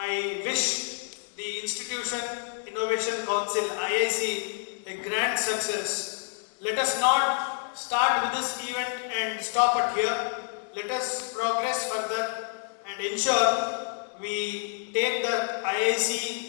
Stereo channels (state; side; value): silent; right; 59 dB below the other